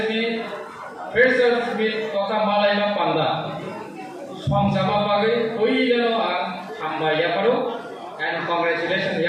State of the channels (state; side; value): identical; both; correlation 1.00